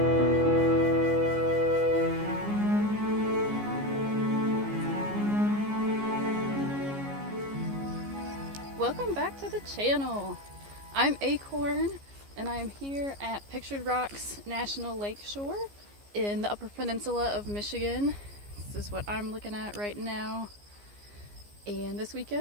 back to the channel. I'm Acorn and I'm here at Pictured Rocks National Lakeshore in the Upper Peninsula of Michigan. This is what I'm looking at right now. And this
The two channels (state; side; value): late; left; 15 ms